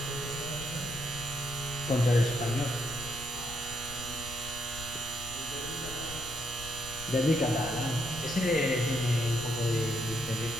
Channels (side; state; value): left; noise; rumble, 14 dB below the sound